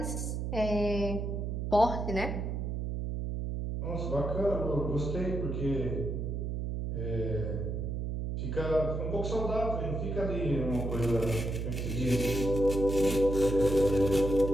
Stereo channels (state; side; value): noise; right; hum, 2 dB below the sound